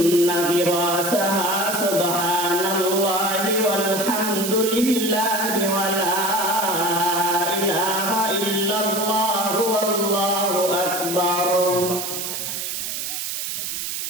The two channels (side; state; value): right; noise; hiss, 4 dB below the sound